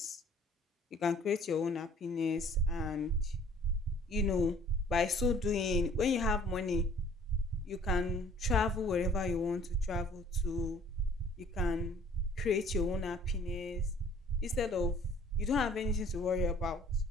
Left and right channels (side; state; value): both; normal; correlation 0.55